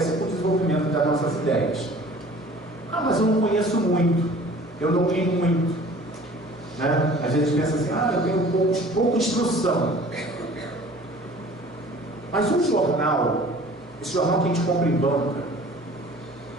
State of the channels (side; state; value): both; normal; correlation 0.48